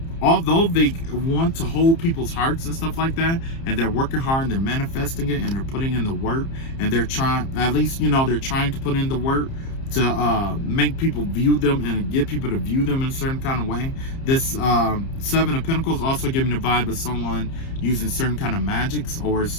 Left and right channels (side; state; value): right; late; 30 ms